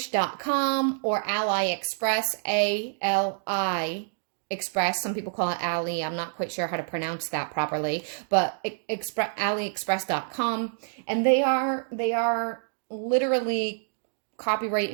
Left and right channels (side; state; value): left; silent; digital silence